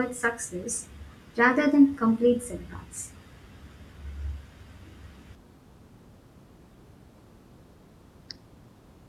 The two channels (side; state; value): both; identical; correlation 1.00